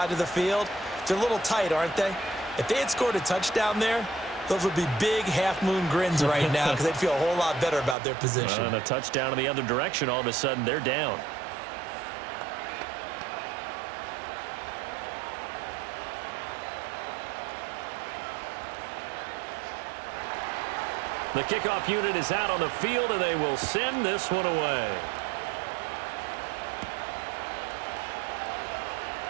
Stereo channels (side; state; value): left; drops out; at 8.0 s